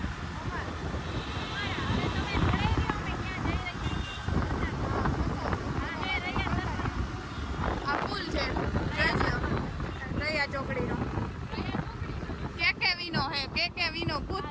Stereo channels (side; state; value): both; identical; correlation 1.00